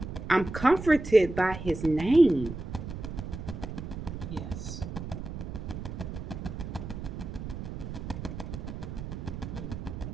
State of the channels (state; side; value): noise; right; rumble, 8 dB below the sound